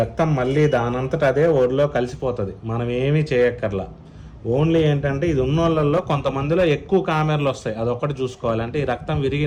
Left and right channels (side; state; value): both; identical; correlation 1.00